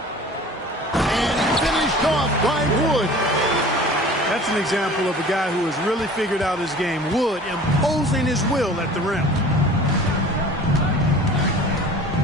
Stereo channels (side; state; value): both; normal; correlation 0.44